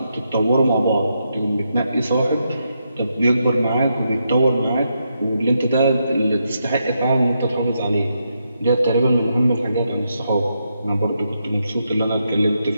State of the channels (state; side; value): inverted; both; correlation -0.82